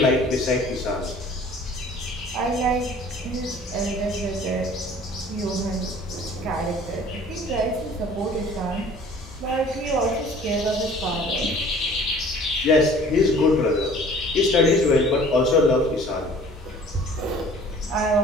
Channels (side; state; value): both; normal; correlation 0.50